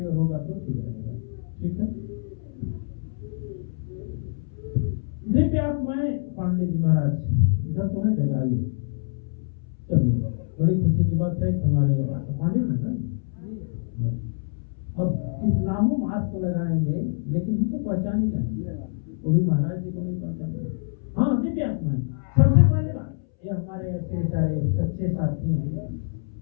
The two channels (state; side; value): silent; right; 61 dB below the other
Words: ओर होगा तो ठीक रहेगा। ठीक है। दिव्य आत्माएं पांडे जी महाराज इधर तो है, जगह आइए। चलिए, बड़ी खुशी की बात है कि हमारे पांडे जी ना अब कितना हो मास्क लगाएंगे लेकिन हम तो पहचान ही जाएंगे, वो भी महाराज जी को नहीं पहचानेंगे। हाँ, दिव्य आत्माएं। सबसे पहले बात ये हमारे ऐसे सारे सच्चे साथी हैं।